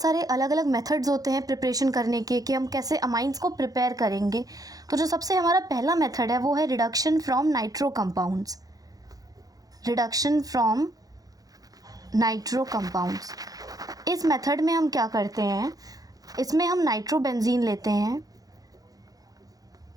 सारे अलग अलग मेथड्स होते हैं प्रिपरेशन करने के कि हम कैसे अमाइंस को प्रिपेयर करेंगे। तो जो सबसे हमारा पहला मेथड है वो है reduction from nitro compounds. Reduction from nitro compounds. इस मेथड में हम क्या करते हैं, इसमें हम नाइट्रोबेंजीन लेते हैं।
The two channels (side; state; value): left; late; 0.18 ms